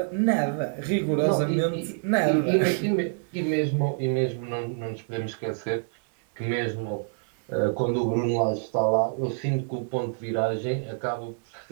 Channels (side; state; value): left; silent; digital silence